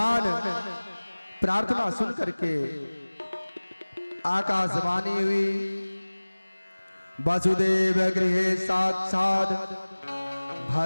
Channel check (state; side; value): inverted; both; correlation -1.00